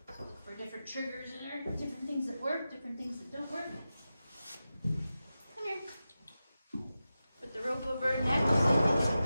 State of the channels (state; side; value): inverted; both; correlation -0.93